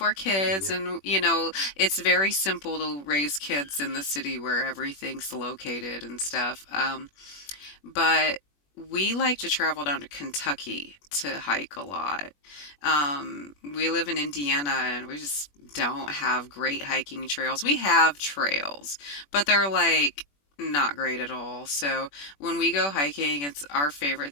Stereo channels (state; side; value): late; right; 21 ms